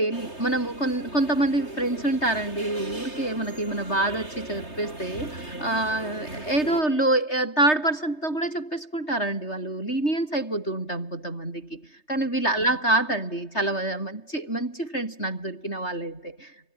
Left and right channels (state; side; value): late; right; 3.3 ms